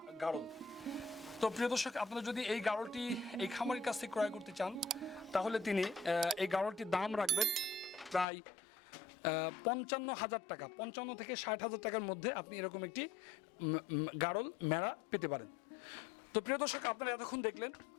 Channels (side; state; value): right; drops out; at 8.2 s